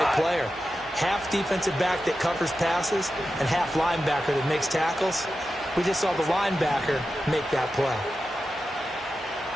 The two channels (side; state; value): both; normal; correlation 0.91